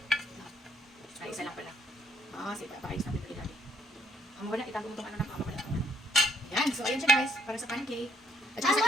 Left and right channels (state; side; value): normal; both; correlation 0.66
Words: ay, isa lang pala. Sige, paayos natin ito ilalim. Ang wala, itago mo itong ano na pamawala. Yan. So, ayan siya, guys. Para sa pancake. At saka I sa